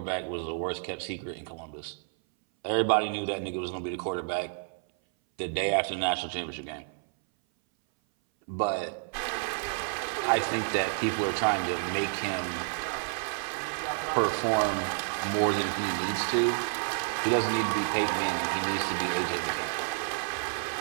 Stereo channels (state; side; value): silent; left; 58 dB below the other